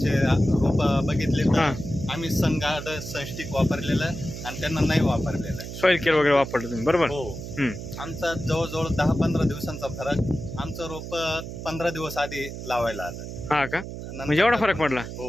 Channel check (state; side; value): noise; right; hum, 9 dB below the sound